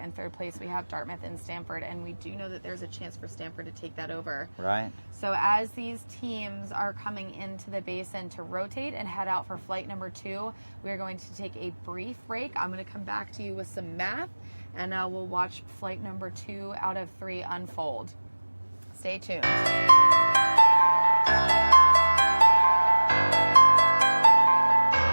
in third place, we have Dartmouth and Stanford, and we do know that there's a chance for Stanford to take that over. Right. So as these teams are coming into the basin to rotate and head out for flight number 2, we're going to take a brief break. I'm going to come back to you with some math, and we'll watch flight number 2 out of 3 unfold. Stay tuned.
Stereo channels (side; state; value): both; inverted; correlation -1.00